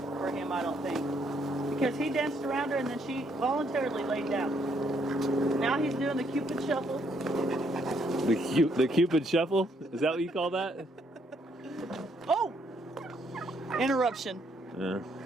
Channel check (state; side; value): normal; both; correlation 0.71